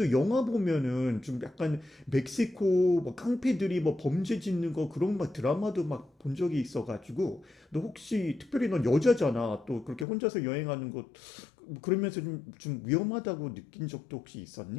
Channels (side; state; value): right; drops out; at 10.1 s